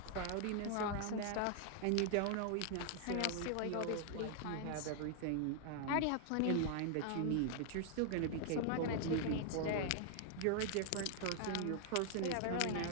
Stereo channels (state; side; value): different; both; correlation 0.00